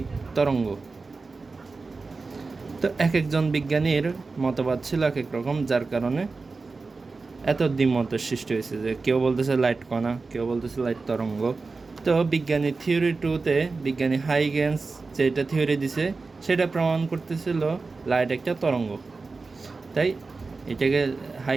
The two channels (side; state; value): left; quieter; 4.0 dB